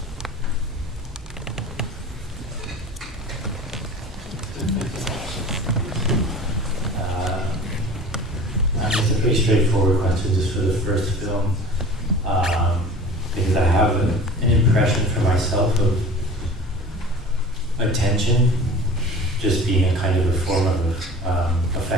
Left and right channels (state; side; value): normal; both; correlation 0.41